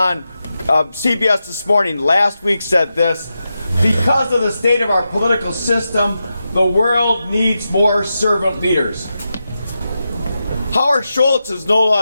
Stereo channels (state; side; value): inverted; both; correlation -0.89